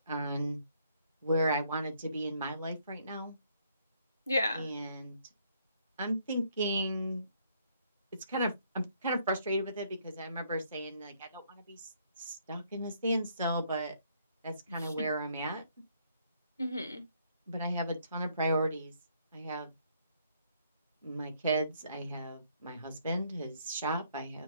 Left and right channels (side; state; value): both; inverted; correlation -0.68